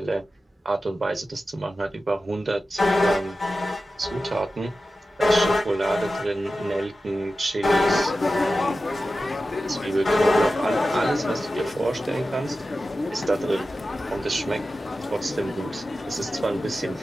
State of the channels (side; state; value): both; normal; correlation 0.93